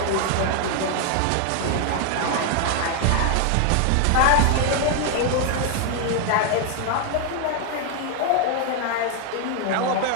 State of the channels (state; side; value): different; both; correlation 0.00